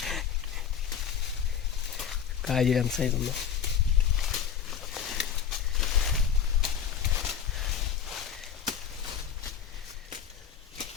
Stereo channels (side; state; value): right; quieter; 8.3 dB